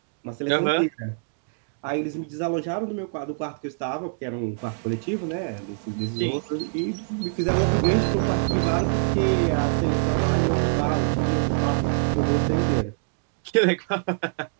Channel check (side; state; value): left; silent; digital silence